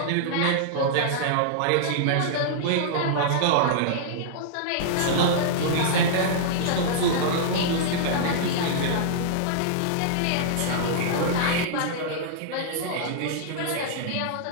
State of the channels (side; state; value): both; different; correlation -0.02